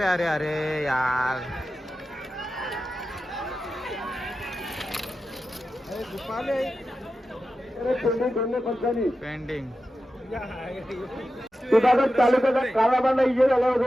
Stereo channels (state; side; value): normal; both; correlation 0.92